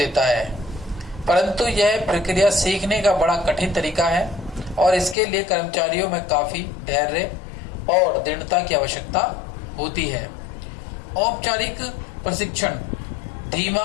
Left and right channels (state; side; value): drops out; right; at 5.2 s